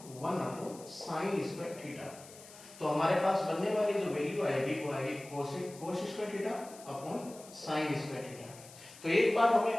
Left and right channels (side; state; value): left; noise; hiss, 19 dB below the sound